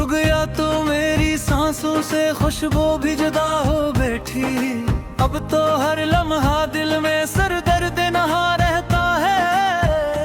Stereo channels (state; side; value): identical; both; correlation 1.00